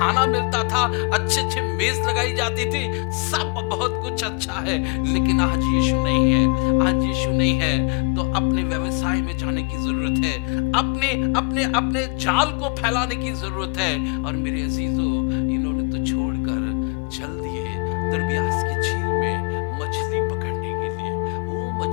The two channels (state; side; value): quieter; right; 33.4 dB